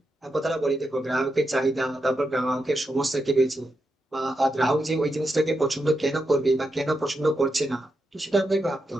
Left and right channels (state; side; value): normal; both; correlation 0.86